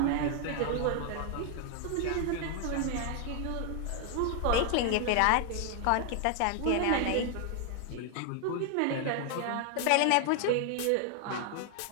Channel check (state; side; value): different; both; correlation 0.00